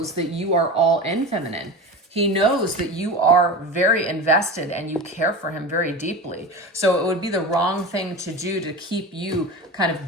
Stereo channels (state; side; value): normal; both; correlation 0.28